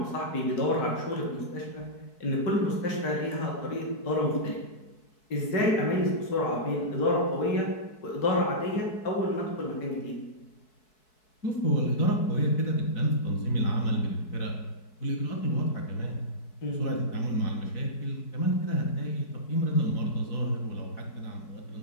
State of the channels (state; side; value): late; right; 4.7 ms